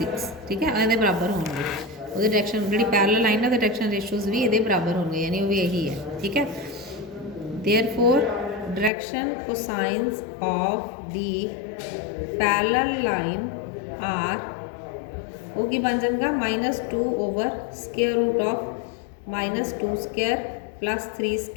ठीक है, ये बराबर होंगे, वो डायरैक्शन जी पैरलल लाइन है डायरैक्शन रेशियोज भी ये बराबर होंगे, यानी वो भी यही है। ठीक है, therefore direction cosines of the parallel line are, वो की बन जाएगा -2/√ऑफ -2² प्लस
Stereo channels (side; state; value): right; drops out; at 8.9 s